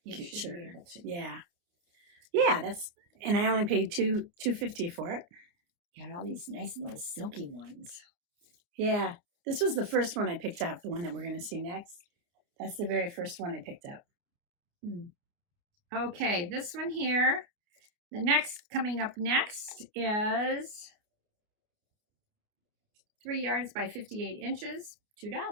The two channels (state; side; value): late; left; 29 ms